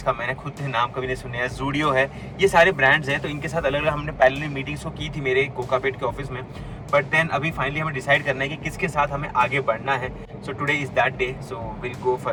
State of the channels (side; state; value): both; identical; correlation 1.00